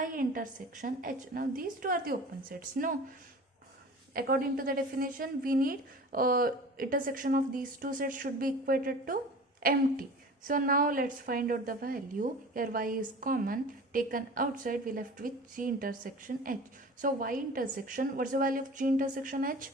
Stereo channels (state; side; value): normal; both; correlation 0.39